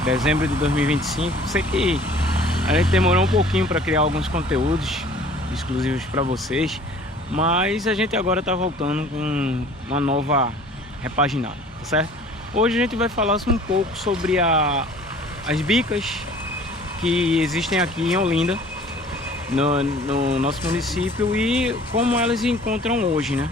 dezembro de 2025. Sei que a gente demorou um pouquinho para criar alguns conteúdos exclusivos para vocês, mas a gente agora está voltando com uma nova repaginada, tá certo? Hoje a gente vai falar um pouco sobre as bicas que existem aqui em Olinda, no nosso município, e como elas se encontram hoje, né?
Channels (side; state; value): both; normal; correlation 0.49